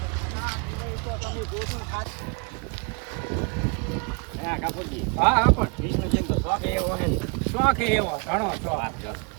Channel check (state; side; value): quieter; left; 34.3 dB